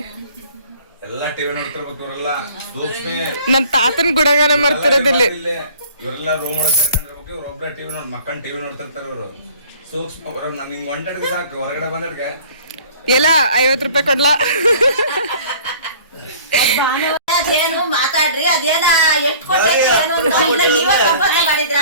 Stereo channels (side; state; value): both; inverted; correlation -0.49